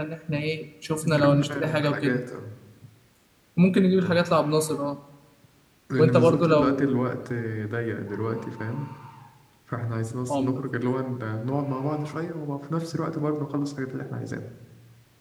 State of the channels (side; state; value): both; identical; correlation 1.00